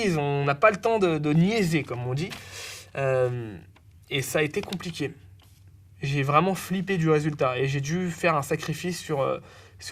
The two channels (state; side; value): identical; both; correlation 1.00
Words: on n'a pas le temps de niaiser, comme on dit. Et ça a été compliqué. J'ai vraiment flippé du résultat et j'ai dû faire un sacrifice